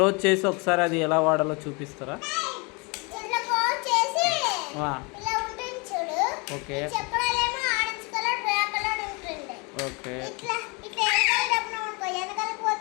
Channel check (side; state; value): right; quieter; 29.8 dB